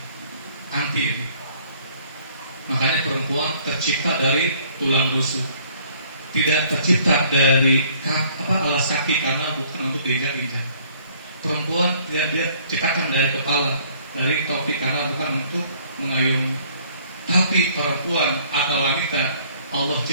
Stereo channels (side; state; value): both; inverted; correlation -0.59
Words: anti ini. Makanya perempuan tercipta dari tulang rusuk, tidak tercipta dari alas kaki karena bukan untuk diinjak-injak. Perempuan tidak dia ciptakan dari kepala, dari topi karena bukan untuk mengayungi. Tapi perempuan atau wanita Allah